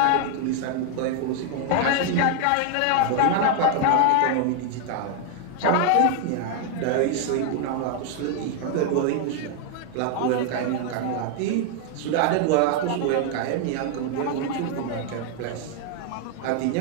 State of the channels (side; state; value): both; different; correlation 0.00